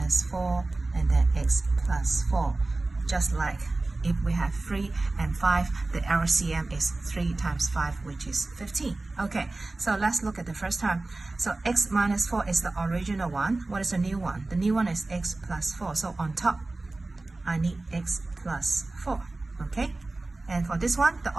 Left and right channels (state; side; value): quieter; left; 3.1 dB